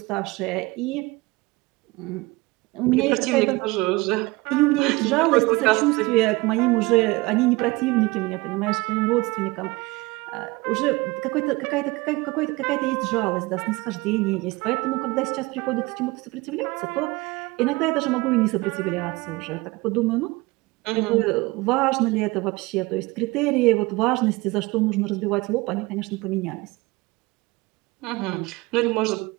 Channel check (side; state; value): left; quieter; 22.8 dB